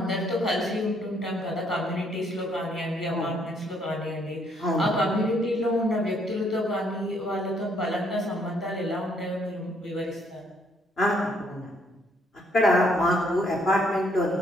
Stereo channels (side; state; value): both; normal; correlation 0.68